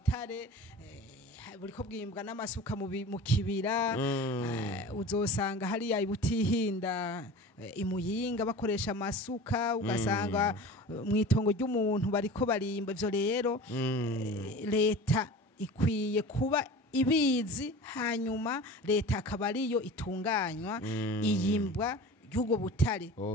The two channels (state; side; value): normal; both; correlation 0.37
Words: buriko bwimbwa n'amasuka mu kibira uzosanga hariya ibutihinda imuyinga bakoresha amasuka ugasanga mwitongo ry'umuntu bariko barimba ivyo rero leta ikwiye kuba ibizi hanyuma leta akaba ariyo itunganywa iyimbwa y'ubwo butare